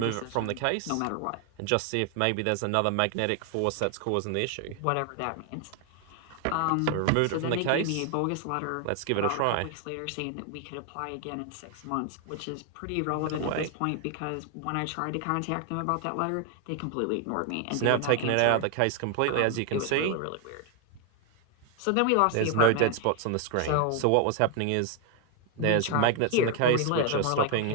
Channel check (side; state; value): both; different; correlation 0.00